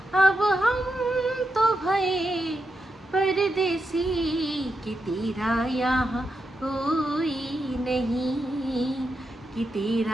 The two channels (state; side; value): normal; both; correlation 0.86